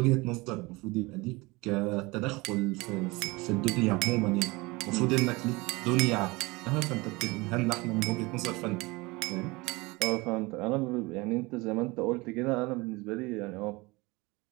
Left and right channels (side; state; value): left; quieter; 23.7 dB